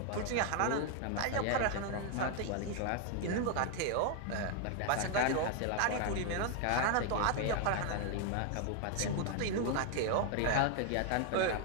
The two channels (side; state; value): both; different; correlation 0.00